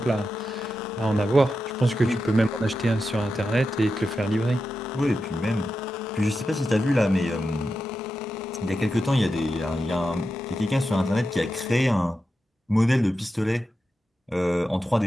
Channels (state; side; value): normal; both; correlation 0.90